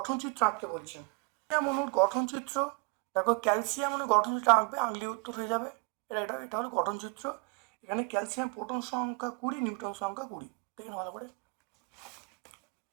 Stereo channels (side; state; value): left; quieter; 33.1 dB